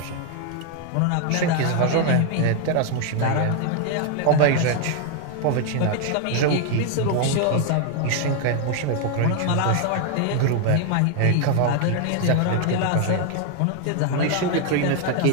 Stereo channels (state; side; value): different; both; correlation 0.01